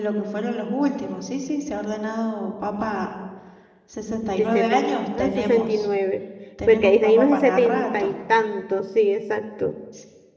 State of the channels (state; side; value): identical; both; correlation 1.00